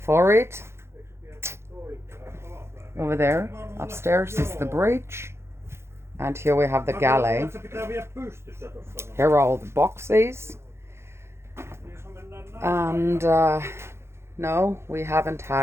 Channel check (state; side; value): late; left; 0.13 ms